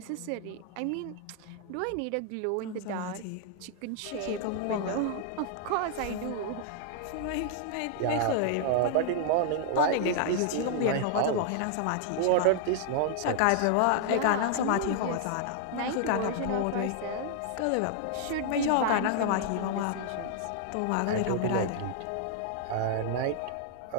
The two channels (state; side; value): different; both; correlation 0.00